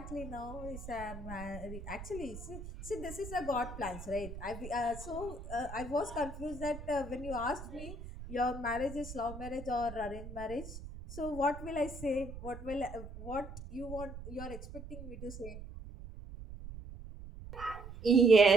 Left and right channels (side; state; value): right; noise; rumble, 11 dB below the sound